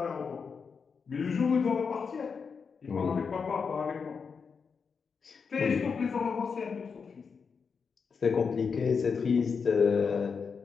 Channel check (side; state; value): right; quieter; 5.7 dB